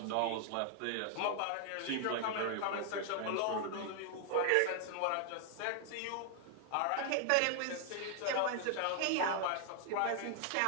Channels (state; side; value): different; both; correlation 0.00